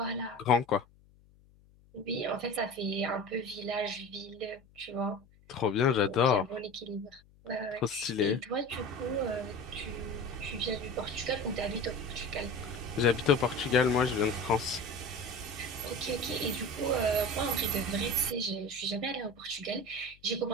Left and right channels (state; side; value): noise; left; hum, 28 dB below the sound